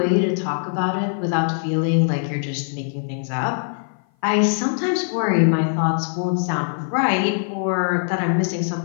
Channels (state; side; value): silent; right; 56 dB below the other